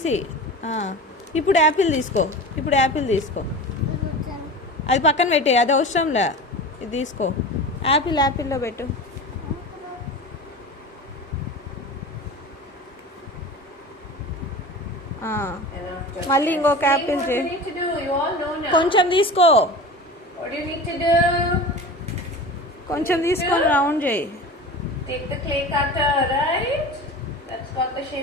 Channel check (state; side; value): normal; both; correlation 0.33